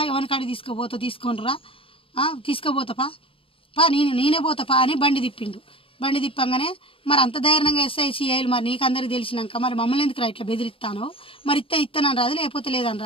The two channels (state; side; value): late; right; 0.26 ms